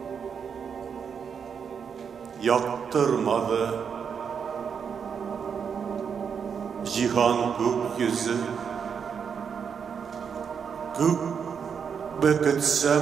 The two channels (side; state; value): left; quieter; 6.8 dB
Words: Yaktırmadı cihan gökyüzü. Gök